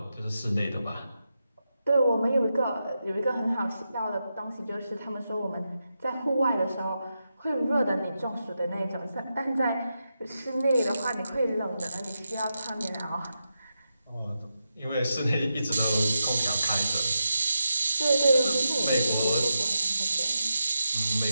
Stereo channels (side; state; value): both; inverted; correlation -0.87